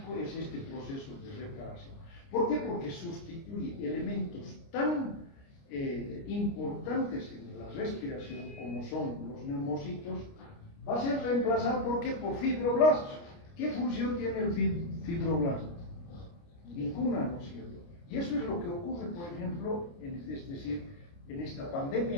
es este proceso de reparación. ¿Por qué? Porque sustituye elementos tan importantes en la respiración como son los neumocitos, va a ser reemplazado ¿por qué? Por fibroblastos. ¿Qué función tiene el fibroblasto? Ninguna, ¿no es cierto? Y eso es lo que ocurre, por ejemplo, es decir, en esta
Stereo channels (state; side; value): late; right; 29 ms